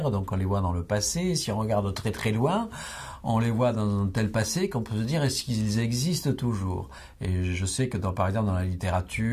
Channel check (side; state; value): both; identical; correlation 1.00